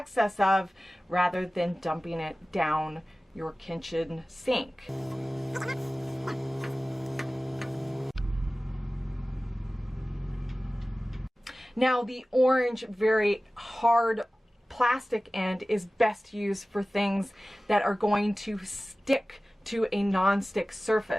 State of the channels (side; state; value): both; normal; correlation 0.97